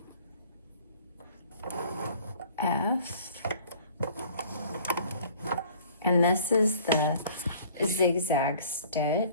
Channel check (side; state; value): both; inverted; correlation -0.51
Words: F. And this is the zigzag